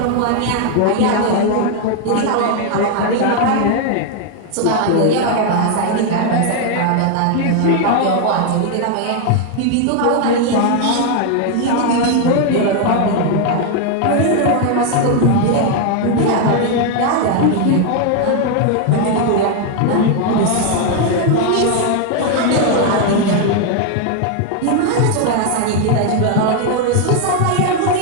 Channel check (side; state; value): both; different; correlation 0.01